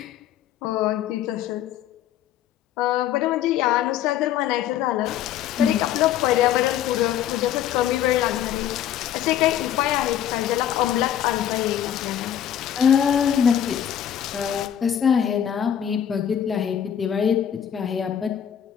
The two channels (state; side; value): quieter; right; 10.1 dB